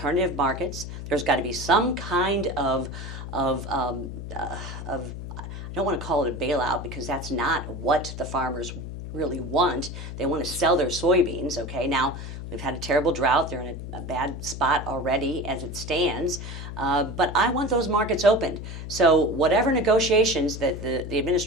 markets. There's got to be some kind of I don't want to call it a bailout, because that's not what the farmers really want. They want to sell their soybeans. Okay, now we've had a terrible drought. They're in a bad spot already as it stands. But I want those markets opened. So whatever negotiations that the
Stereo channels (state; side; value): noise; left; hum, 9 dB below the sound